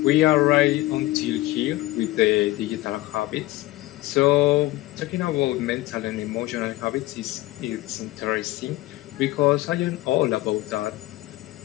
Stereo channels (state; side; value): quieter; right; 18.0 dB